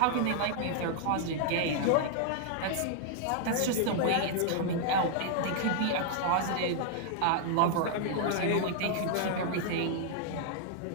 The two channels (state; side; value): different; both; correlation 0.00